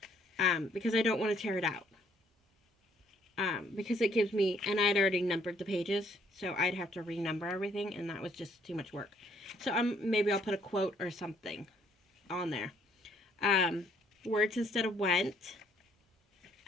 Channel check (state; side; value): normal; both; correlation 0.65